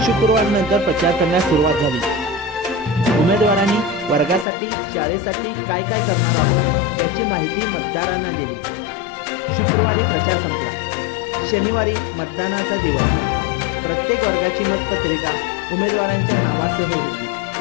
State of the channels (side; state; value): right; drops out; at 4.5 s